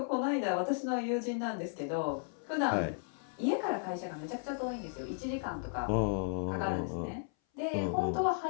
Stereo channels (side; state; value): right; silent; 55 dB below the other